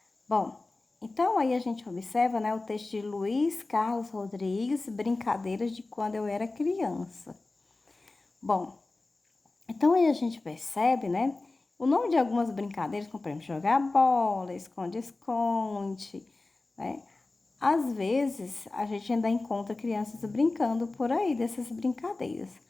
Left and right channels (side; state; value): right; quieter; 3.3 dB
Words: Bom, então aí a gente observa, né, o texto de Luiz Carlos Rodrigues, Brincadeiras de Quando Eu Era Criança. Bom, então aí a gente percebe, né, o nome de algumas brincadeiras, como por exemplo, jogar bola, esconde-esconde, né? Às vezes a gente ainda encontra crianças brincando por aí dessas brincadeiras,